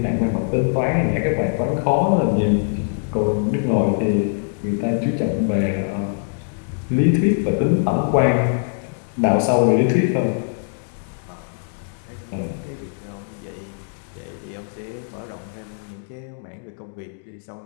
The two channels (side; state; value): right; silent; digital silence